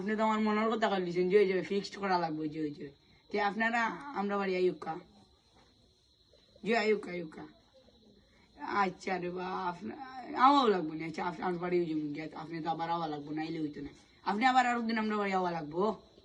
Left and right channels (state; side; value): identical; both; correlation 1.00